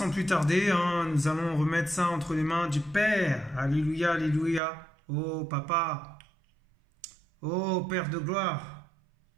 plus tarder, nous allons remettre ça entre les mains du Père. Alléluia, alléluia. Oh, Papa. Oh, Père de gloire.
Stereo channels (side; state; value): left; drops out; at 4.6 s